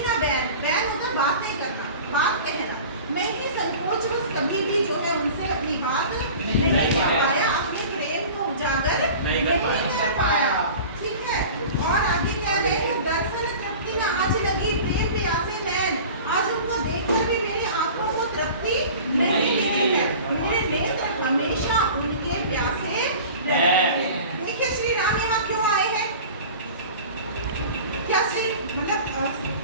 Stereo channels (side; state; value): both; inverted; correlation -0.39